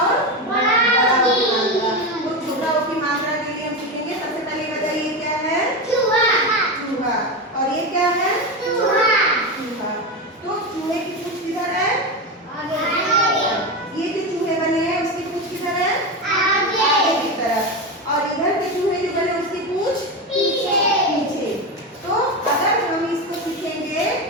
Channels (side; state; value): both; normal; correlation 0.17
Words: बड़ा ओ की मात्रा। तो छोटा ओ की मात्रा के लिए हम सीखेंगे सबसे पहले बताइए क्या है? चूहा। चूहा। और ये क्या है? चूहा। चूहा। तो चूहे की पूंछ किधर है? आगे। ये जो चूहे बने हैं उसकी पूंछ किधर है? आगे। आगे की तरफ। और इधर के चूहे जो बने उसकी पूंछ पीछे। पीछे। तो अगर हम इसको सीखेंगे